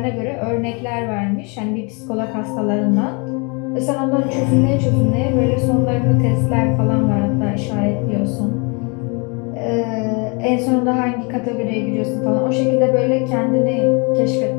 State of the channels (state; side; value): quieter; right; 32.3 dB